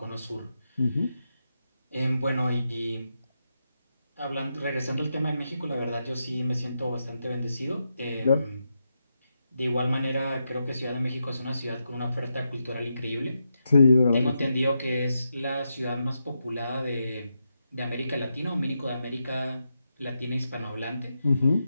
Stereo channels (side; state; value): both; inverted; correlation -0.85